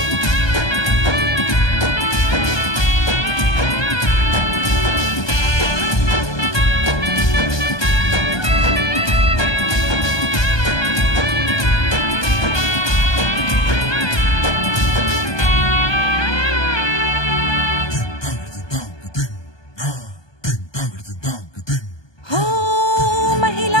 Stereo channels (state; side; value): late; right; 1.2 ms